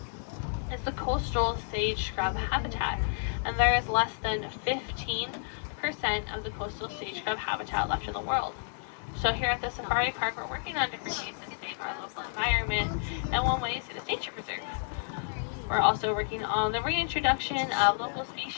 is the coastal sage scrub habitat, and there is less than 15% of the coastal sage scrub habitat left in the world. So here at the Safari Park, we're working on different ways to save our local environment, and one way is through the nature preserve. We're also working on the reintroduction of local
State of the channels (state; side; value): silent; right; 57 dB below the other